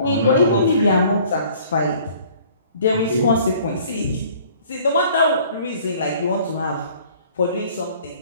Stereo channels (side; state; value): both; inverted; correlation -0.54